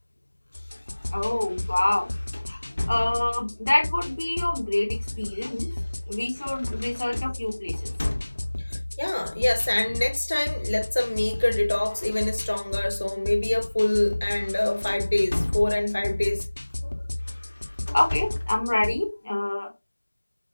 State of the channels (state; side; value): inverted; both; correlation -1.00